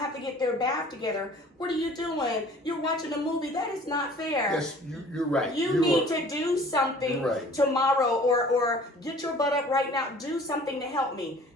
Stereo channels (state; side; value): normal; both; correlation 0.49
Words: have to get their bath together. What are you doing? You're watching a movie. That is not fair. Yes, you're right. You need to do something tomorrow, or get your butt up right now. Do something to help me.